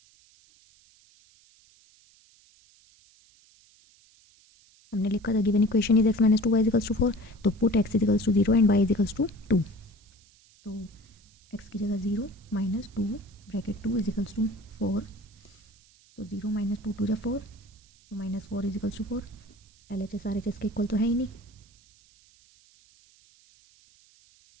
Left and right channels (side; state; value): right; noise; hiss, 29 dB below the sound